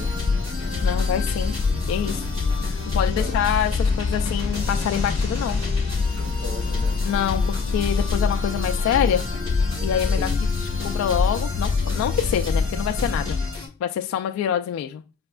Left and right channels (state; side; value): quieter; right; 5.4 dB